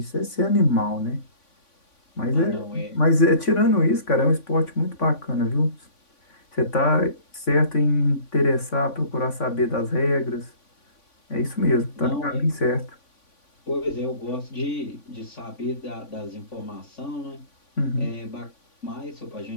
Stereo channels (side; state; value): right; late; 3.5 ms